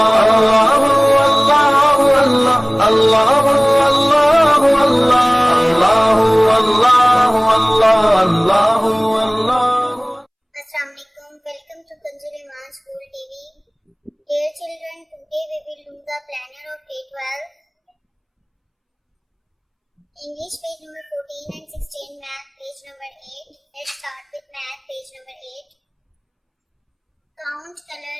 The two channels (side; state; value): both; identical; correlation 1.00